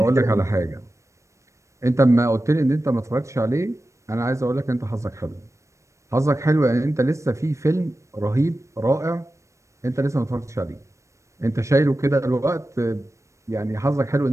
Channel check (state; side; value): late; left; 0.15 ms